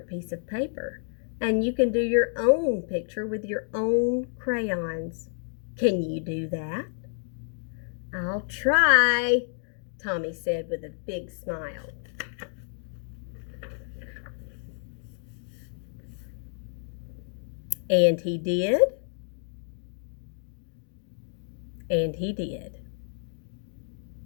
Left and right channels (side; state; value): right; silent; digital silence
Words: piece of paper, and you can do your own picture with your own crayons. Can you do that?" "I'll try," Tommy said with a big smile. And he did. And he did.